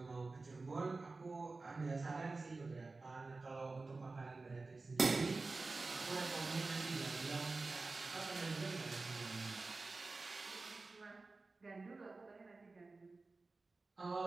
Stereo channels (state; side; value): quieter; left; 3.6 dB